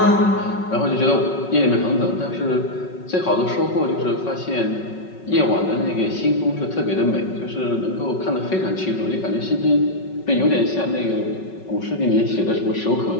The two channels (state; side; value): late; right; 5.4 ms